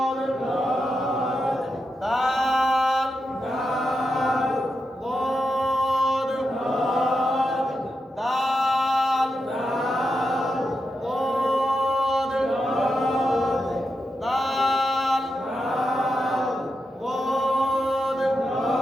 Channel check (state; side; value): normal; both; correlation 0.87